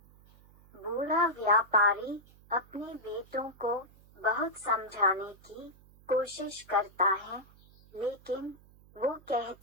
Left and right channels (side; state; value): right; noise; hum, 26 dB below the sound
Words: बूढ़ा व्यापारी अपने बेटों को बहुत समझाने की कोशिश करता है, लेकिन वो